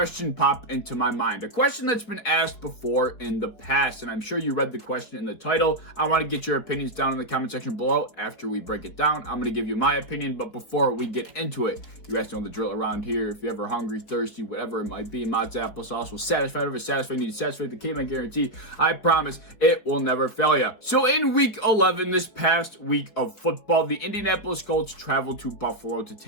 pop into my mind. A question that's been asked before in the past, and I'm sure you read the question in the title. I want to get your opinions down in the comment section below. After we break it down, I'm going to give you my opinion, but before we get into it, you guys know the drill around here. If you're ever hungry, thirsty, whatever it might be, Mott's applesauce will satisfy whatever satisfying needs. Satisfy the Caveman guarantee. I promise it will never fail you. So in week 11, this past week of football, the Indianapolis Colts traveled to Buffalo to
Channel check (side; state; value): right; late; 4.6 ms